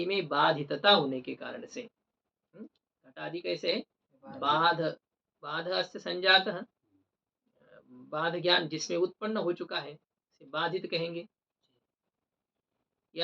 में बाधितता होने के कारण से। घटादि कैसे है? बाध, बाध अस्य संजातः, बाध ज्ञान जिसमें उत्पन्न हो चुका है, इसे बाधित कहेंगे।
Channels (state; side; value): identical; both; correlation 1.00